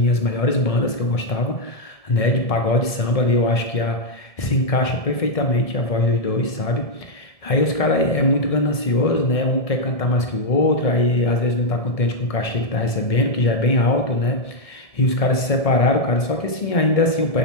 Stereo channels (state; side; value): late; right; 1.7 ms